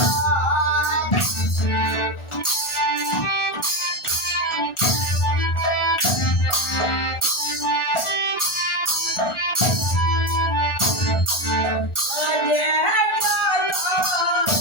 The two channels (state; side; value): late; right; 1.4 ms